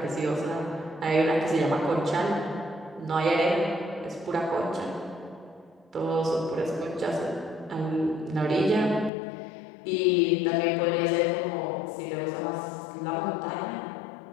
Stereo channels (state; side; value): drops out; right; at 9.1 s